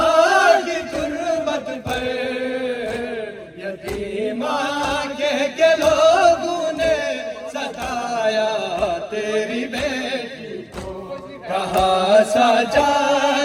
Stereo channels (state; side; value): identical; both; correlation 1.00